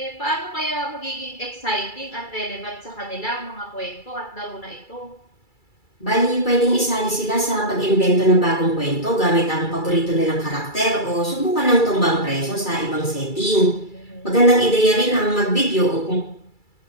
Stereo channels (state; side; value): late; right; 2.3 ms